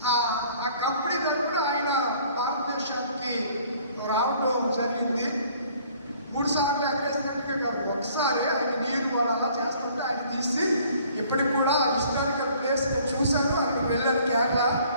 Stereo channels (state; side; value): inverted; both; correlation -0.57